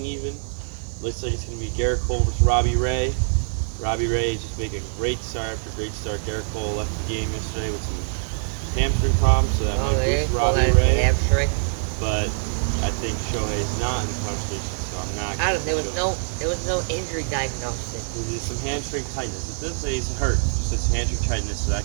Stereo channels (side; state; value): left; silent; 57 dB below the other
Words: even. Looks like it's going to be Garrett Cole versus Robbie Ray. Robbie Ray just making a great start after great start. Garrett Cole left the game yesterday with some hamstring problems, so that might boost Robbie Ray. Hamstring. But I think Shohei is not in the conversation, so I'm not. There was no injury diagnosis. There's some hamstring tightness. It does say he's hurt. Just it's hamstring tightness, so